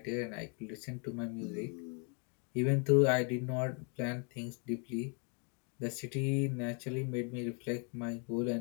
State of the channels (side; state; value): right; quieter; 37.2 dB